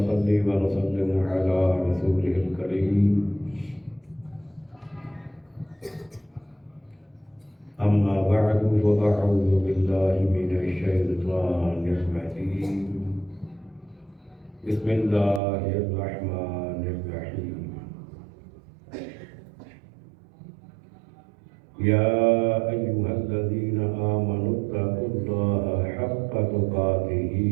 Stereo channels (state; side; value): drops out; left; at 15.4 s